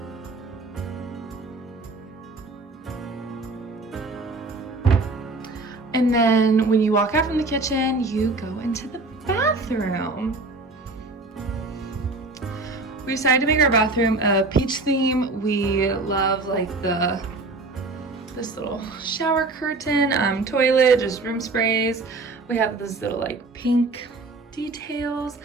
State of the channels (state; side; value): quieter; left; 3.4 dB